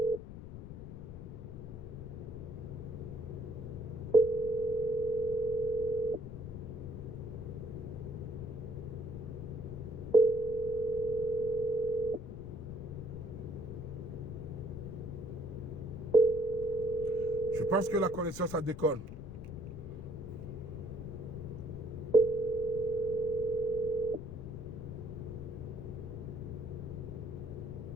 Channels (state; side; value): noise; left; rumble, 11 dB below the sound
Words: Je pense que la connexion, ça déconne.